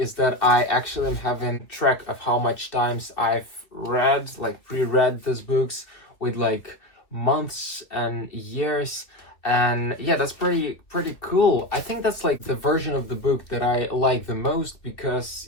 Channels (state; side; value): late; right; 2.4 ms